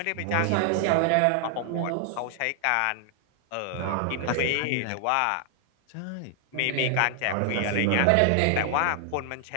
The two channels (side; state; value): both; different; correlation 0.00